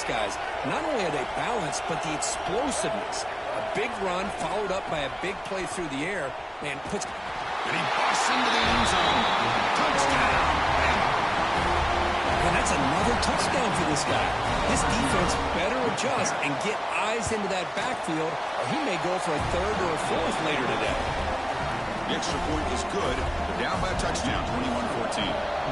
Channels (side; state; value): both; identical; correlation 1.00